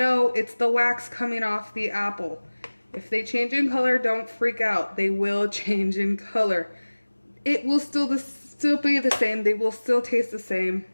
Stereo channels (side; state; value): both; inverted; correlation -1.00